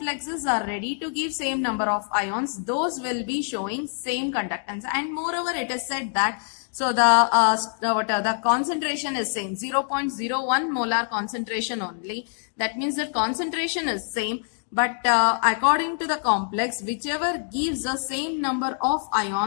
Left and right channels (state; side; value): silent; right; 62 dB below the other